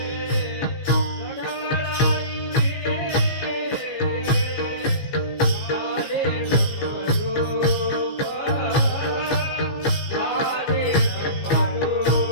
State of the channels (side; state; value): right; late; 15 ms